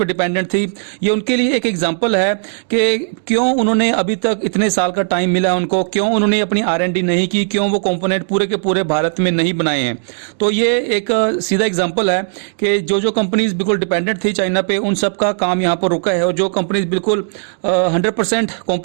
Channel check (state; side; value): silent; left; digital silence